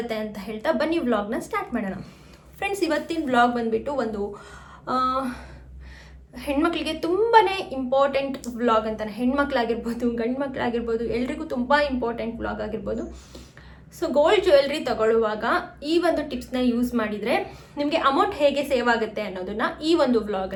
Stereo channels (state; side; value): identical; both; correlation 1.00